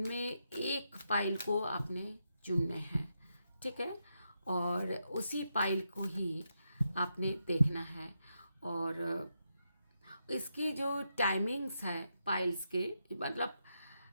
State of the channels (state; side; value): inverted; both; correlation -0.84